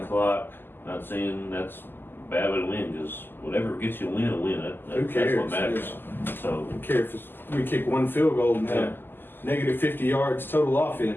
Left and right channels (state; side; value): late; right; 0.096 ms